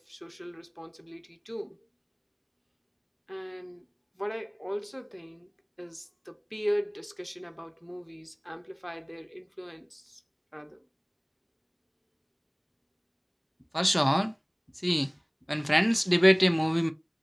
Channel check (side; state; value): both; identical; correlation 1.00